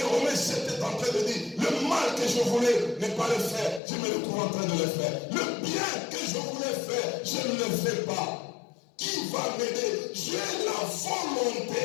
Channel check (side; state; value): right; drops out; at 3.8 s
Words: Romains 7 est en train de dire, le mal que que je voulais ne pas le faire, je me retrouve en train de le faire. Le bien que je voulais faire, je ne le fais pas. Qui va m'aider? J'ai la volonté